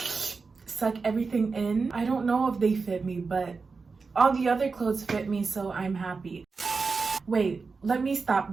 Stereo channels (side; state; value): left; quieter; 4.6 dB